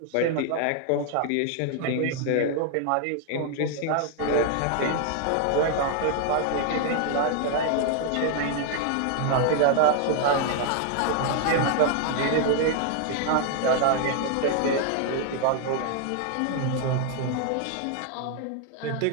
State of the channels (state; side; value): different; both; correlation 0.00